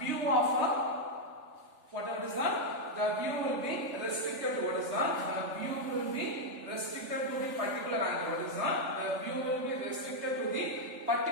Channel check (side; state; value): left; late; 3.4 ms